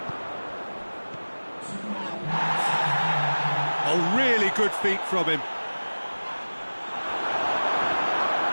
Oh, really good feet from him.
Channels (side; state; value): both; inverted; correlation -1.00